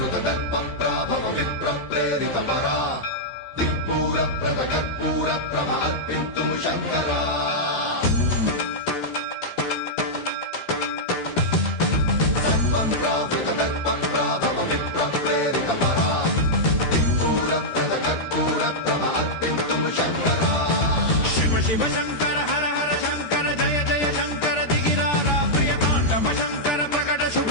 विप्रप्रेरितपरा दिक्पूरप्रदकर्पूरप्रभ अर्पिन्तुं शङ्करा सर्वं प्रावृतदर्पप्राभव विप्रप्रेरितपरा दिक्पूरप्रदकर्पूरप्रभ अर्पिन्तुं शङ्करा शिव शिव शङ्कर हर हर शङ्कर जय जय शङ्कर दिगिरारा प्रियताण्डव शङ्कर प्रकट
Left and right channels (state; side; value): late; right; 13 ms